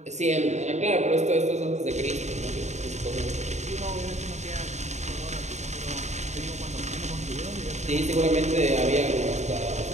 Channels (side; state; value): left; late; 0.33 ms